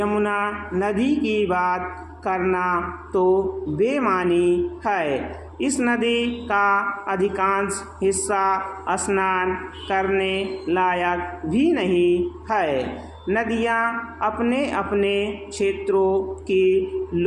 नदी की बात करना तो बेमानी है। इस नदी का अधिकांश हिस्सा स्नान करने लायक भी नहीं है। नदियाँ अपने अपने क्षेत्रों की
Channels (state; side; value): identical; both; correlation 1.00